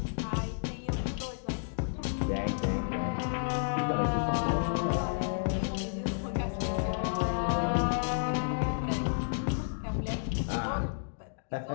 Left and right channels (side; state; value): right; silent; digital silence